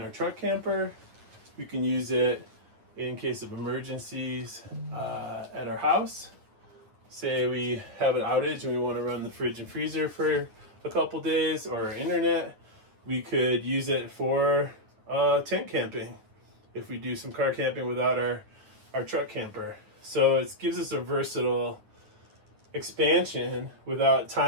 our truck camper, we can use it in case of emergencies at our house. Say we have an outage and we want to run the fridge and freezer for a couple days, or our internet, we could use it for tent camping if we do some car camping without our truck camper. So it gives us a versatile expansion without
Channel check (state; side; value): late; left; 9.5 ms